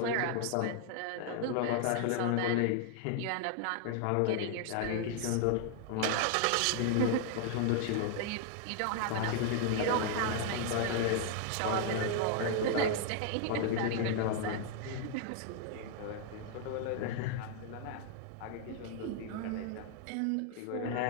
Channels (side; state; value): both; different; correlation 0.00